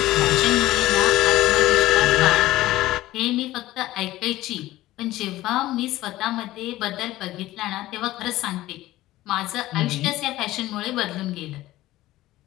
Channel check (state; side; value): quieter; right; 16.3 dB